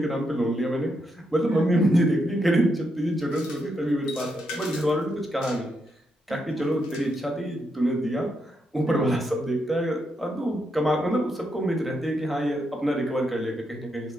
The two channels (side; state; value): both; normal; correlation 0.81